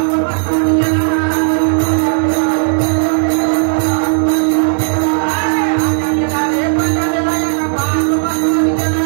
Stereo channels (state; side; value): silent; left; digital silence